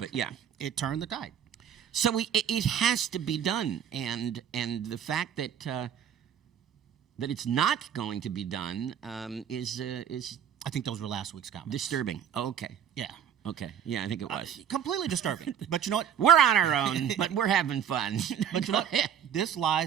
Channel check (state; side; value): quieter; left; 9.0 dB